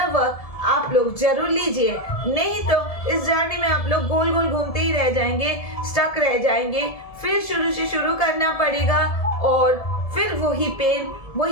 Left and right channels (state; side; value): late; right; 1.7 ms